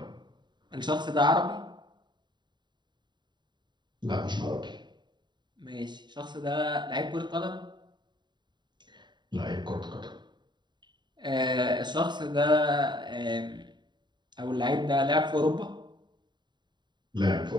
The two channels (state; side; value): late; left; 0.22 ms